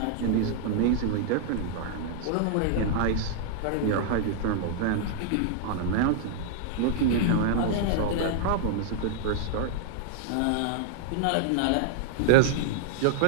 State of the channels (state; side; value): different; both; correlation -0.01